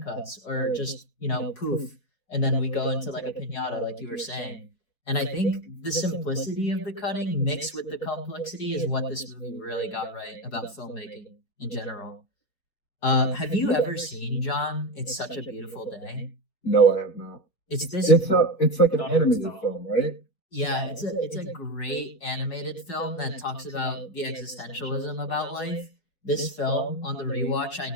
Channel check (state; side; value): late; right; 4.6 ms